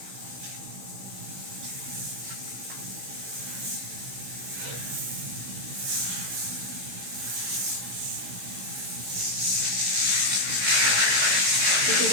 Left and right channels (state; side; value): late; left; 16 ms